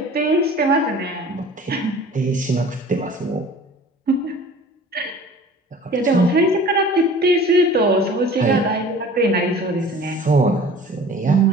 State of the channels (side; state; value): both; normal; correlation 0.45